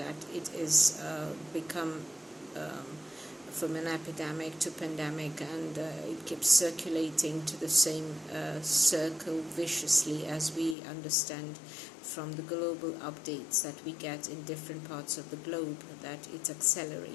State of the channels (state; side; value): drops out; right; at 10.8 s